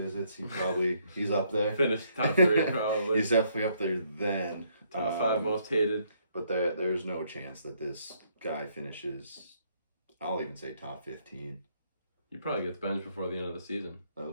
he's up there. Finished top 3 probably. He's definitely up there then. Top 5 most hated. But there's no chance that this guy finishes, I'll even say top 15. He probably gets benched before the end of the season. That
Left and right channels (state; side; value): inverted; both; correlation -0.69